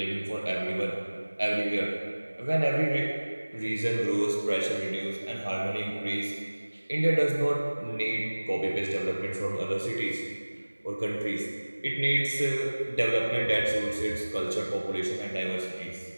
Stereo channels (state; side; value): inverted; both; correlation -1.00